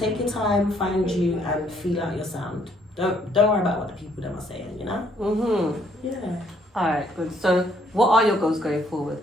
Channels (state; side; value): normal; both; correlation 0.67